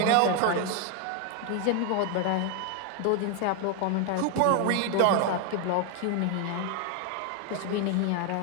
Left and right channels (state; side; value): different; both; correlation 0.01